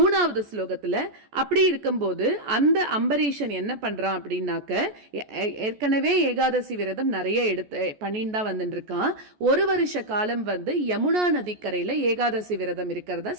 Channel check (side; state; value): left; late; 14 ms